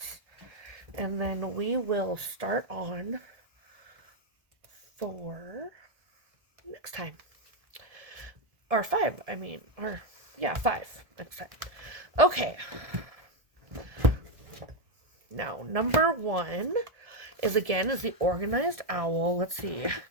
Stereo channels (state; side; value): late; left; 1.7 ms